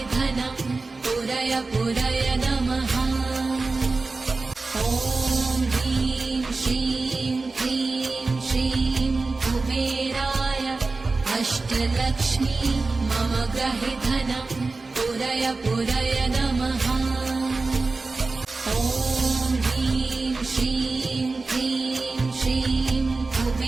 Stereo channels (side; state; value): left; quieter; 3.7 dB